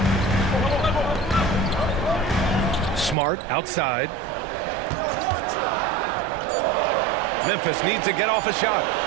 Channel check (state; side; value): drops out; left; at 3.2 s